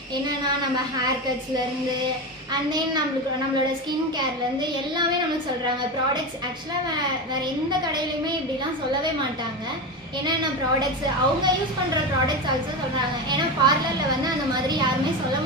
என்னென்னா நம்ம ஹேர் கட்ஸ்லேருந்து அண்ட் தென் நம்மளோட ஸ்கின் கேர்லேருந்து எல்லாமே நம்மளுக்கு சொல்கிறாங்க. ப்ராடக்ட்ஸ் ஆக்சுவலாக வேறு எந்த கடையிலையுமே இப்படிலாம் சொல்லவே மாட்டாங்க. என்னென்ன ப்ராடக்ட்ஸ் அவங்க யூஸ் பண்ணுற ப்ராடக்ட்ஸ் ஆல்சோ சொல்கிறாங்க. ஏன்னா பார்லரில் வந்து அந்த மாதிரி யாருமே சொல்ல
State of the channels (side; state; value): both; normal; correlation 0.19